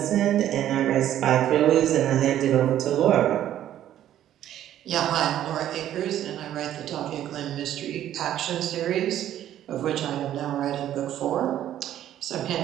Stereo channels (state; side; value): quieter; left; 11.8 dB